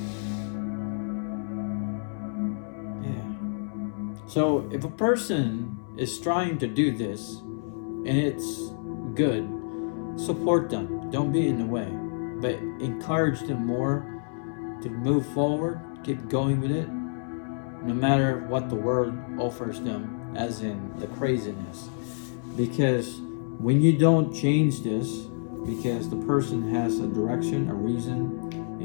Yeah. So if a person is trying to do this and it's good, support them. Don't be in the way, but encourage them more to move forward, keep going with it, no matter what the world offers them, as in the craziness. Because when you don't change this, because the person has a direction, a reason,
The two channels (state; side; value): silent; right; 59 dB below the other